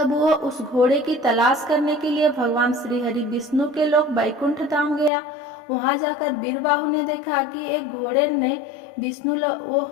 वो उस घोड़े की तलाश करने के लिए भगवान श्री हरि विष्णु के लोक बैकुंठ धाम गया। वहां जाकर वीरबाहु ने देखा कि एक घोड़े ने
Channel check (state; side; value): drops out; right; at 5.1 s